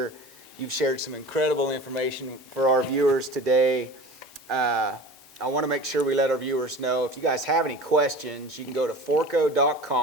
You've shared some incredible information for our viewers today. I want to make sure we let our viewers know, if you guys have any questions, you can go to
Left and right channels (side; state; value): both; normal; correlation 0.37